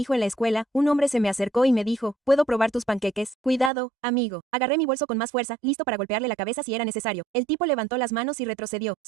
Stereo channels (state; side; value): drops out; left; at 3.7 s